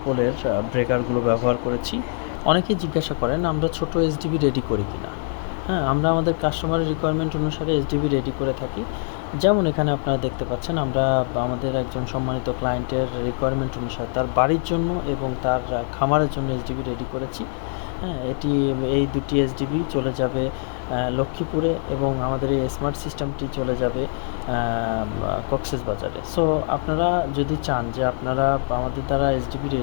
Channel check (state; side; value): silent; right; 58 dB below the other